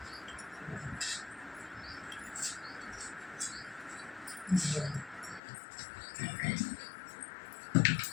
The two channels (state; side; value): drops out; right; at 5.4 s